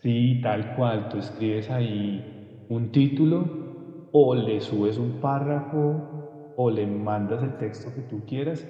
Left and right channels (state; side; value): identical; both; correlation 1.00